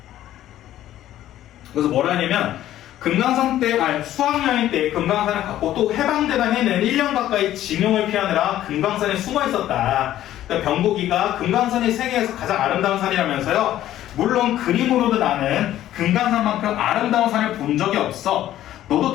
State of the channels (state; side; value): quieter; right; 12.9 dB